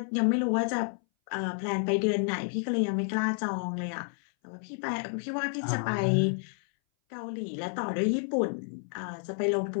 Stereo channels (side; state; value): right; silent; 58 dB below the other